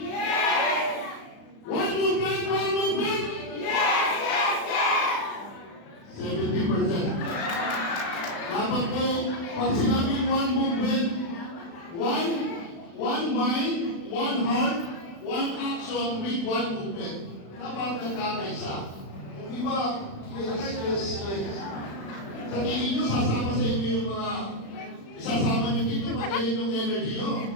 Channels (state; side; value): late; right; 36 ms